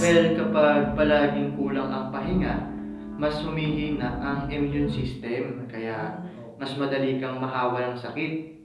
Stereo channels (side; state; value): both; identical; correlation 1.00